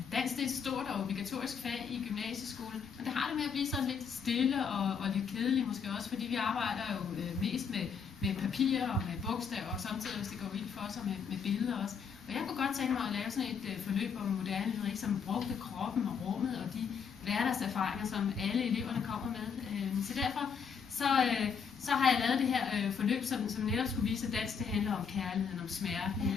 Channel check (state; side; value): quieter; right; 6.4 dB